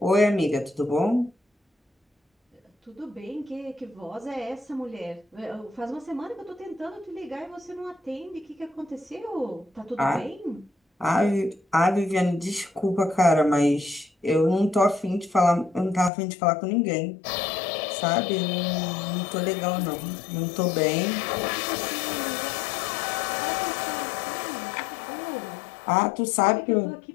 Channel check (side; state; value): right; drops out; at 16.1 s